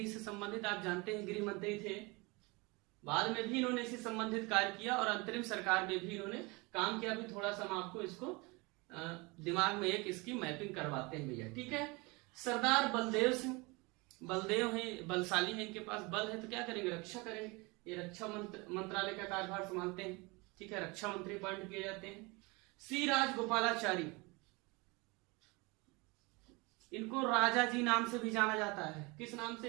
से संबंधित, आप जानते हैं गृह मंत्री थे। बाद में भी इन्होंने इससे संबंधित कार्य किया और अंतरिम सरकार में भी इन्होंने काम किया। भी थोड़ा सा हम आपको इसको दिमाग में एक इसकी मैपिंग करवाते हैं भैया, ठीक है। सरदार बलदेव सिंह, बलदेव हैं, बलशाली है, इनके पास बल है तो क्या करेंगे? रक्षा करेंगे। ये रक्षा मंत्रालय का कार्यभार संभालते हैं, ठीक है। रक्षा मंत्री अपॉइंट किए जाते हैं। सी राजगोपालाचारी, इनको राजा जी नाम से भी जाना जाता है। किस नाम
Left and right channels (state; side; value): quieter; left; 26.3 dB